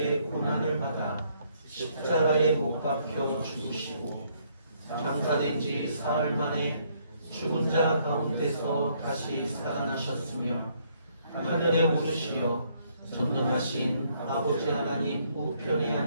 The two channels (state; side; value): inverted; both; correlation -0.69